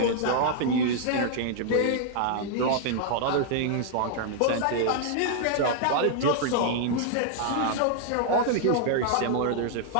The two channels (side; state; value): both; different; correlation 0.00